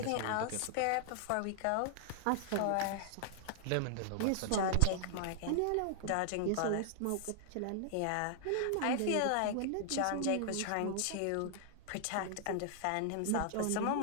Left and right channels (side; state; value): both; different; correlation -0.01